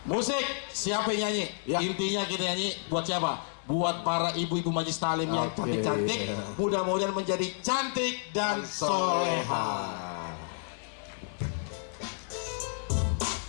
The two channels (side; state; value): right; silent; digital silence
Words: Musik, siapa yang nyanyi? Ya. Intinya kita nyanyi buat siapa? Buat para ibu-ibu majlis talim yang Oke. cantik-cantik, mudah-mudahan menjadi cantik dan soleha.